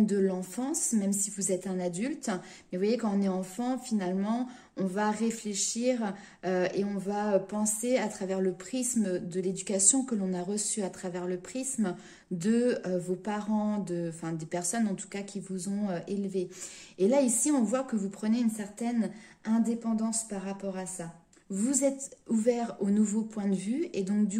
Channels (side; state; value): both; identical; correlation 1.00